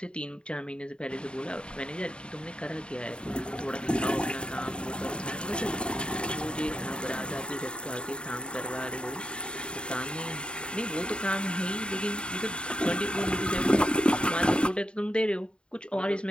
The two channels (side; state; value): right; late; 0.053 ms